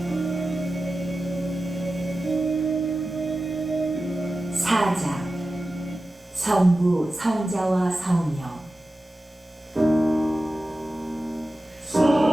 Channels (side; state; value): both; normal; correlation 0.94